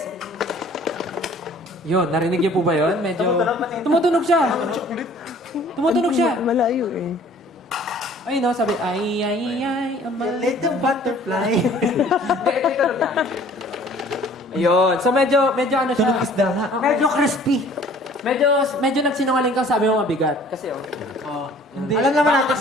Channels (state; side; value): normal; both; correlation 0.52